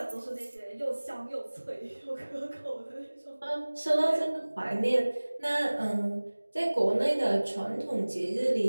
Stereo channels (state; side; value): inverted; both; correlation -1.00